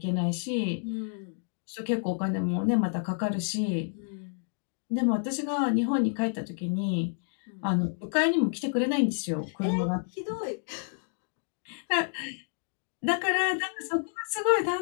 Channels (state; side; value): silent; right; 57 dB below the other